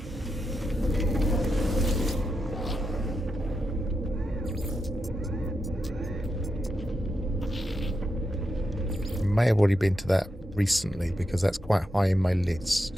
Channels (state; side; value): normal; both; correlation 0.86